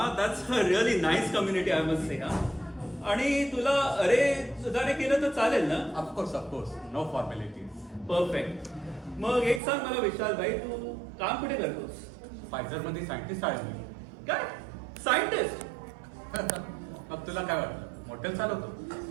That's a really nice community I must say. आणि तुला अरे सुधारे केलं तर चालेल ना? Of course no formalities. परफेक्ट. मग एक सांग मला विशालबाई, तू काम कुठे करतोस? फायझरमध्ये सायंटिस्ट आहे मी. काय सायंटिस्ट? मग तुला काय वाटलं, मॉडेल चालवतो?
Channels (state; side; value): drops out; left; at 9.6 s